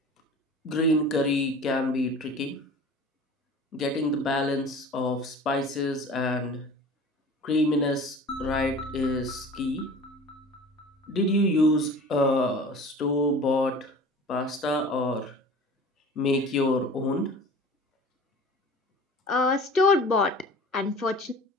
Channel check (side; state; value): both; normal; correlation 0.41